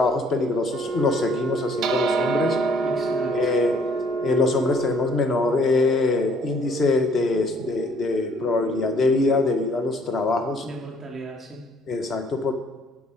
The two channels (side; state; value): both; normal; correlation 0.61